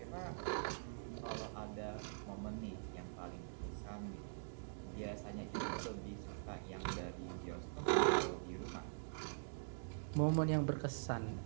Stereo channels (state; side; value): silent; left; digital silence